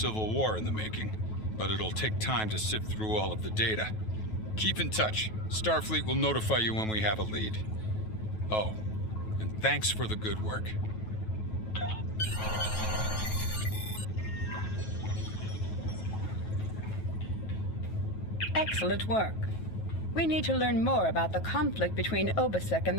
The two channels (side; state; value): right; late; 9.3 ms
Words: war in the making, but it'll take time to sift through all of the data. Keep in touch. Starfleet will notify you when we have a lead. Oh, and thanks for the good work. Excellent work. We need to learn more about the conflict between Obasek and